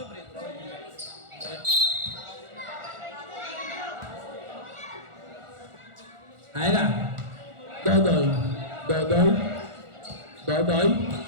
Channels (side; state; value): left; late; 1.4 ms